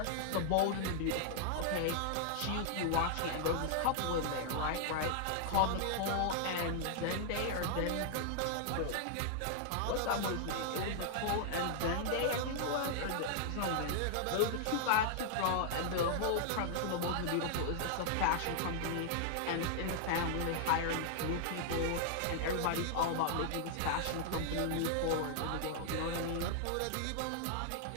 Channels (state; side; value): different; both; correlation -0.01